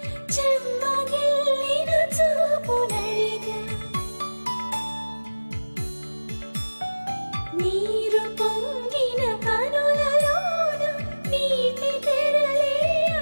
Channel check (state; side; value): inverted; both; correlation -1.00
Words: చెమ్మగిల్లిన చూపునడిగా నీరు పొంగిన కనులలోన నీటి తెరలే